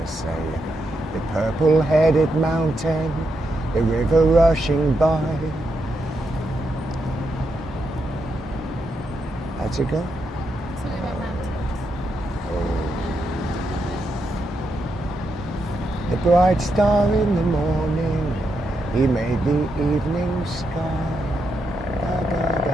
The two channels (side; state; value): both; normal; correlation 0.83